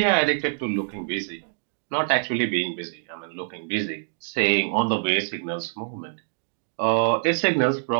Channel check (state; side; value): silent; left; digital silence